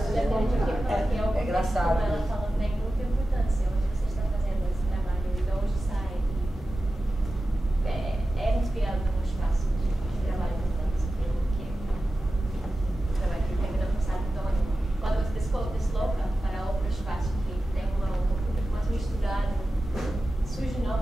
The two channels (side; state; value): both; normal; correlation 0.94